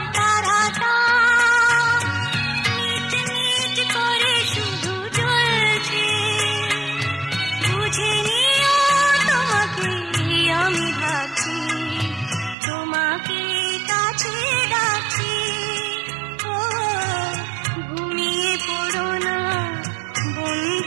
তারাটা মিট মিট করে শুধু জ্বলছে, বুঝে নিও তোমাকে আমি ভাবছি, তোমাকে কাছে ডাকছি। ও ঘুমিয়ে পড়ো না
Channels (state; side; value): drops out; left; at 12.6 s